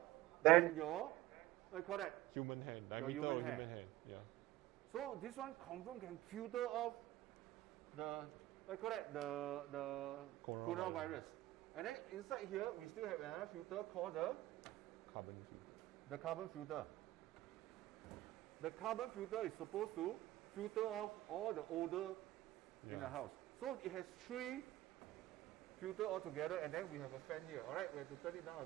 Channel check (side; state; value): left; quieter; 16.3 dB